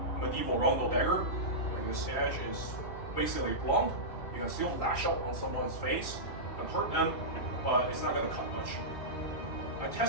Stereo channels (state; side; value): late; right; 2.7 ms